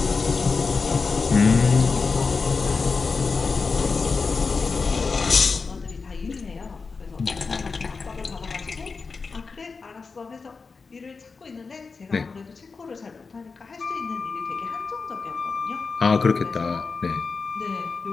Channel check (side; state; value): right; quieter; 4.6 dB